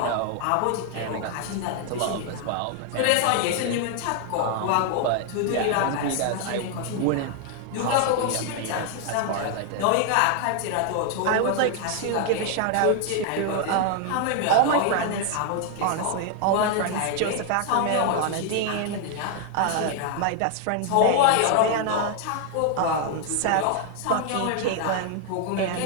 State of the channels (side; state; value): both; different; correlation 0.00